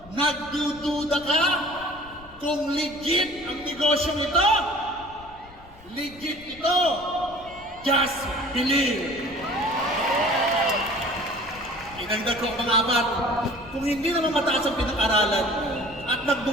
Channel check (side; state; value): left; noise; rumble, 22 dB below the sound